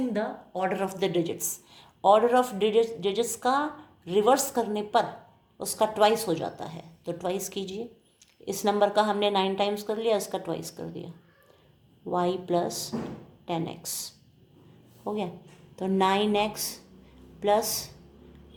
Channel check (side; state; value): both; identical; correlation 1.00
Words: the order of the digits. Order of digits का रिवर्स करने पर उसका ट्वाइस हो जाता है, तो ट्वाइस कीजिए। इस नंबर का हमने 9 टाइम्स कर लिया, इसका ट्वाइस कर दिया, y प्लस 10x हो गया। तो 9x plus